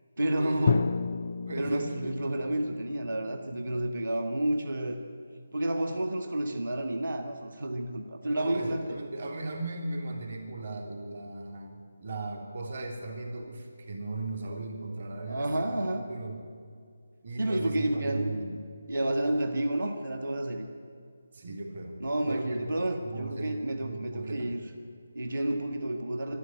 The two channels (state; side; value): inverted; both; correlation -0.92